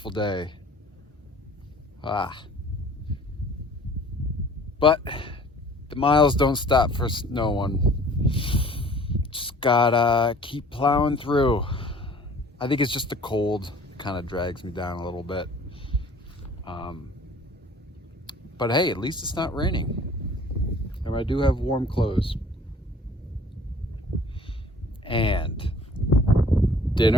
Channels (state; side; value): normal; both; correlation 0.51